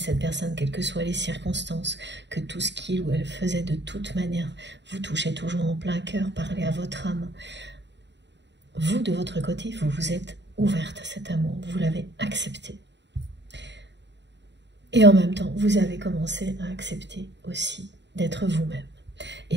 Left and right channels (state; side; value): late; left; 0.52 ms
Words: personne, quelles que soient les circonstances, que tout ce qu'il ou elle faisait de toute manière vous touchait toujours en plein cœur, parlait à votre âme. Vous, de votre côté, vous vous êtes ouverte à cet amour, vous l'avez accepté. Et en même temps, vous avez commencé à accepter aussi d'être vous-même